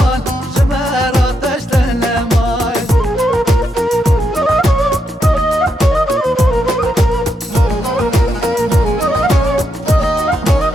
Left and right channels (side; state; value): both; normal; correlation 0.81